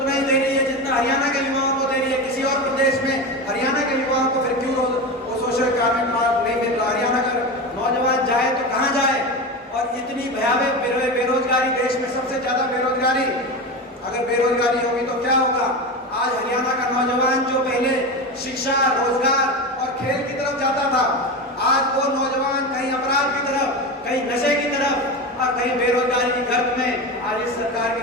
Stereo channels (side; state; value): both; normal; correlation 0.23